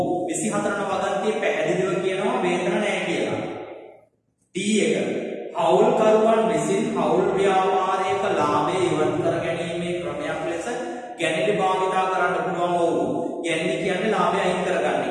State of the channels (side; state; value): both; identical; correlation 1.00